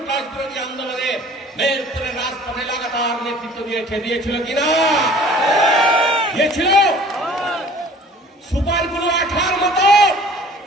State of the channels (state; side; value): normal; both; correlation 0.49